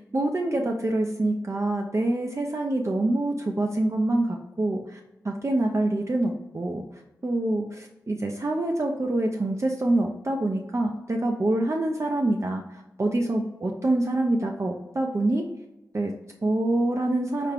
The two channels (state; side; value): normal; both; correlation 0.92